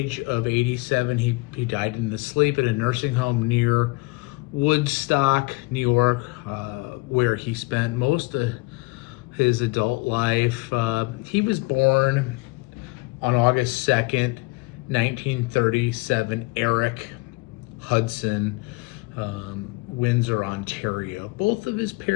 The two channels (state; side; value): quieter; right; 24.5 dB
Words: of 87. He died in his sleep at a nursing home near Woodstock, New York, where he spent most of his adult life. He was born on August 2nd, 1937, Eric Hudson, Windsor, Ontario. Both of his